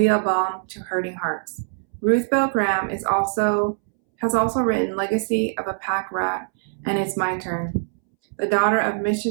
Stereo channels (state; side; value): silent; left; 64 dB below the other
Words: a balm to hurting hearts. Ruth Bell Graham has also written Legacy of a Pack Rat and It's My Turn. The daughter of